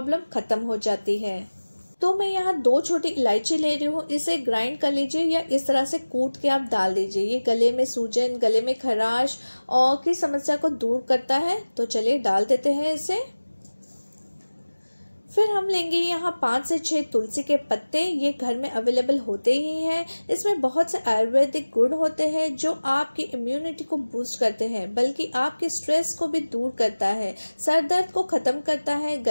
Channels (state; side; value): inverted; both; correlation -1.00